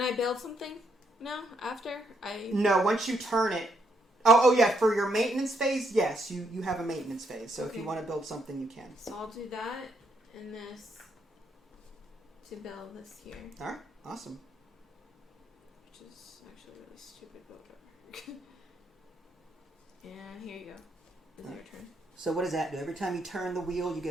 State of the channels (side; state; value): both; normal; correlation 0.77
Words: I build something now after I? No, once you turn it. Oh yeah. For your maintenance phase, yes, you have a maintenance phase. So if you want to build something, you can. So I'll do that and this to build this here. All right. Awesome. Which is actually really stupid builder. And here you go. It's your turn. So what does that do? Every time you turn the wheel, you